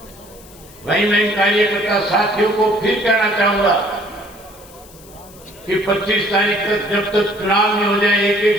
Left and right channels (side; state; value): left; noise; hiss, 23 dB below the sound